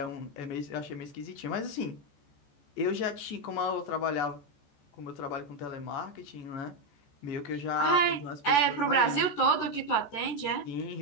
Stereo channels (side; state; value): right; late; 14 ms